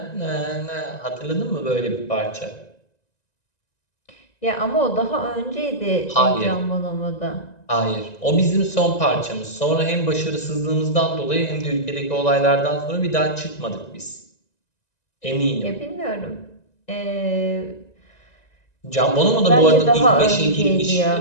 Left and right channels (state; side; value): late; right; 1.9 ms